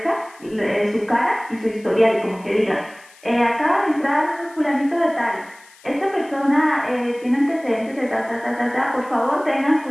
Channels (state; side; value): noise; left; hiss, 26 dB below the sound